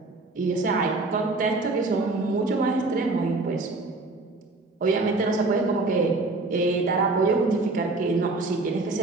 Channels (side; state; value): left; quieter; 3.3 dB